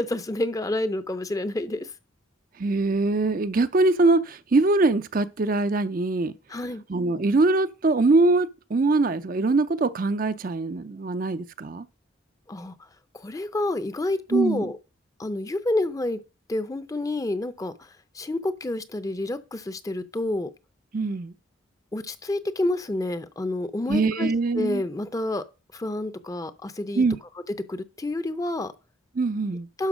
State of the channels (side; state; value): both; normal; correlation 0.61